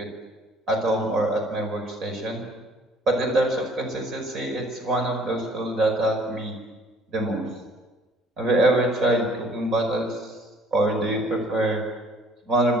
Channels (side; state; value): both; normal; correlation 0.56